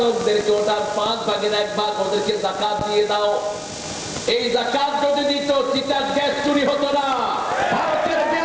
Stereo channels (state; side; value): identical; both; correlation 1.00